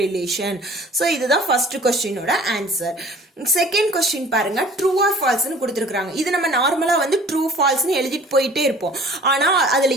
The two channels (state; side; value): normal; both; correlation 0.49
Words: relation. so இதுதான் first questionோட answer. செகண்ட் கொஸ்டின் பாருங்க, ட்ரூ ஆர் ஃபால்ஸ்னு கொடுத்துருக்காங்க. இது நம்ம நார்மலா வந்து ட்ரூ ஃபால்ஸ்னு எழுதிட்டு போயிட்டே இருப்போம். ஆனா அதுல